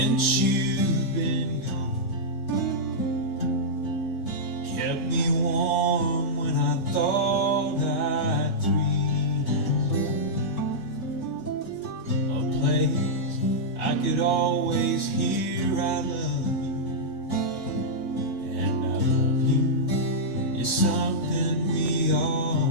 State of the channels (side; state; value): both; normal; correlation -0.10